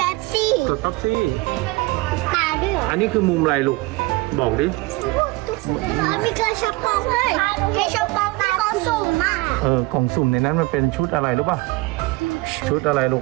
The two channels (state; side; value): quieter; left; 22.1 dB